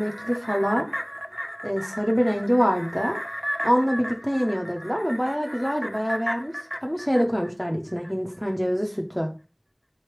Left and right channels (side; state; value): both; identical; correlation 1.00